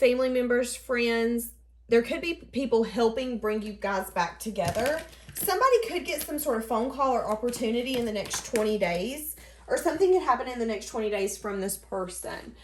members, friends. There could be people helping bring you guys back together. Somebody could get some sort of phone call or opportunity in the next 20 days. Or something could happen in the next 20 days from this person.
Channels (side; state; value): both; identical; correlation 1.00